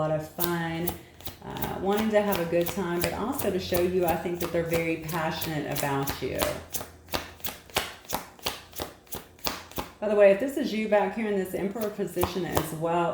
of fun, wanting to have a good time, but also to show you, I think, that they're very passionate about you. By the way, if this is you back here in this Emperor position as well,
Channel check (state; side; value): identical; both; correlation 1.00